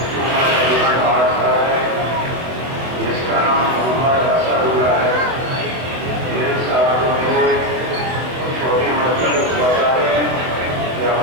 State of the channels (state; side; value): late; left; 24 ms